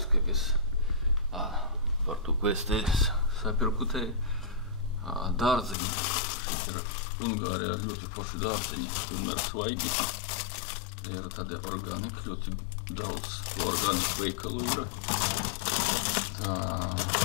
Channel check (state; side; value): drops out; right; at 5.8 s